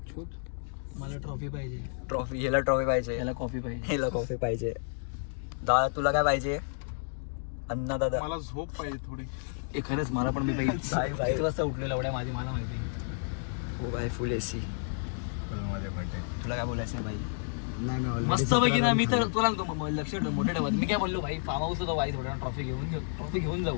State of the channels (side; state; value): right; silent; digital silence